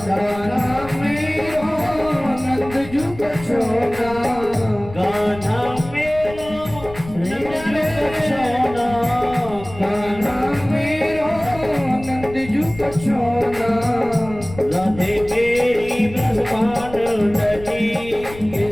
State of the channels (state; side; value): noise; left; rumble, 15 dB below the sound